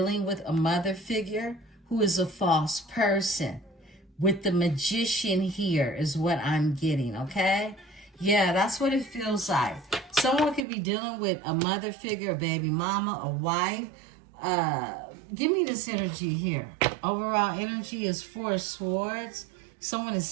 with a mother figure who is a false person. With the Magician here is what I'm getting, okay? Yeah, that's what it feels like. Someone could be dealing with a mother figure, a baby mama, a wife. Give me this energy here. Overall energy is 4 of Swords. Someone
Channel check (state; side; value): drops out; left; at 10.7 s